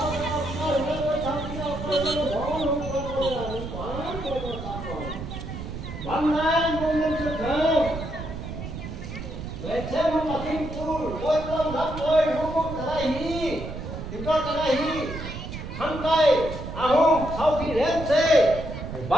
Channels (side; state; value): right; noise; rumble, 8 dB below the sound